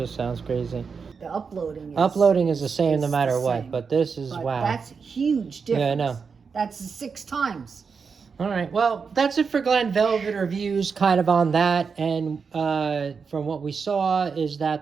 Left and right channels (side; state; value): left; quieter; 5.5 dB